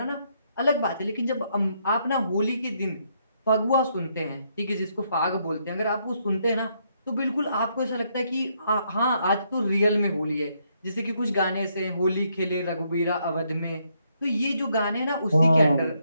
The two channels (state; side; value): inverted; both; correlation -0.74